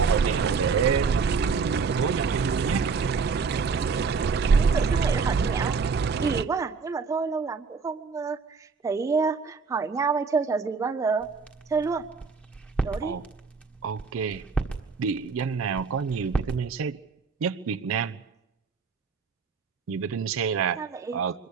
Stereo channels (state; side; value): quieter; left; 5.1 dB